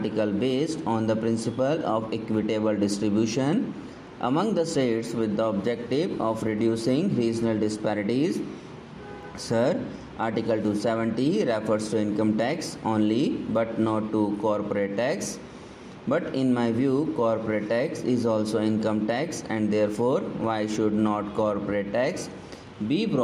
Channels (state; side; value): identical; both; correlation 1.00